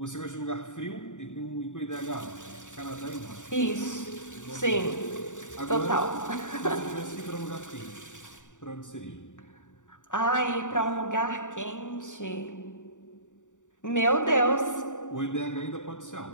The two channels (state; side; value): late; right; 0.86 ms